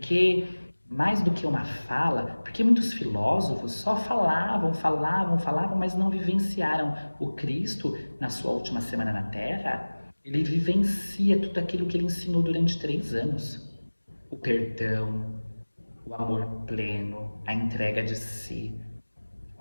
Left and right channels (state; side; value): inverted; both; correlation -1.00